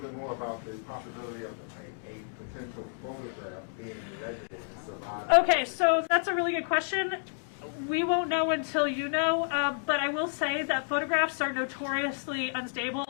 more about the possibility of a potential photograph being in residence of Okay, so that's a really good question. We won't know until you know, but I will say that photographs are notoriously unstable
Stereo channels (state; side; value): silent; right; digital silence